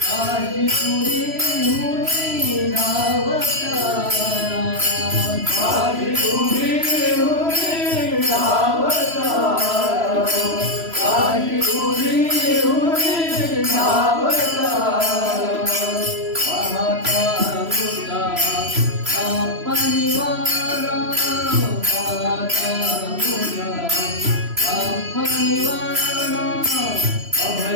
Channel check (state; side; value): late; left; 3.0 ms